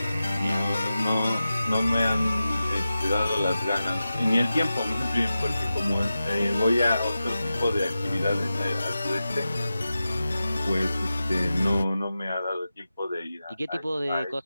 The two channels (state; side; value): inverted; both; correlation -0.93